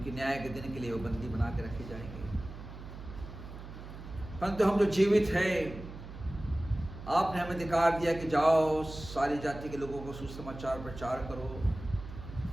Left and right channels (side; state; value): right; noise; hum, 12 dB below the sound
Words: न्याय के दिन के लिए वो बंदी बना के रखे जाएंगे। परंतु हम जो जीवित हैं, आपने हमें अधिकार दिया कि जाओ सारी जाति के लोगों को सुसमाचार प्रचार करो,